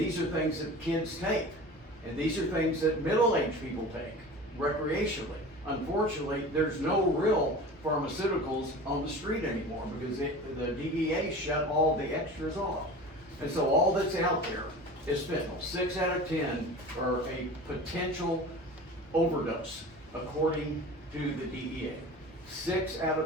are things that kids take. And these are things that middle-aged people take recreationally. Unfortunately, there's no real pharmaceuticals on the street anymore because the DEA shut all the extras off. And so all that's out there is fentanyl. 6 out of 10 are a potential overdose, according to the DEA. 6 out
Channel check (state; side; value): normal; both; correlation 0.37